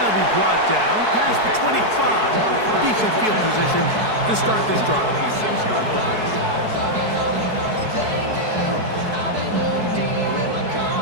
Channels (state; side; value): late; left; 4.6 ms